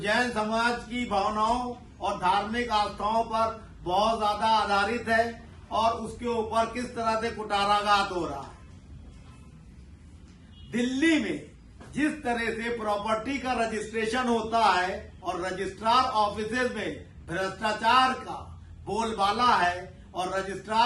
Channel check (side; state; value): both; identical; correlation 1.00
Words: समाज की भावनाओं और धार्मिक आस्थाओं पर बहुत ज्यादा आधारित है और उसके ऊपर किस तरह से कुटाराघात हो रहा है। दिल्ली में जिस तरह से प्रॉपर्टी का रजिस्ट्रेशन होता है और रजिस्ट्रार ऑफिसेज में भ्रष्टाचार का बोलबाला है और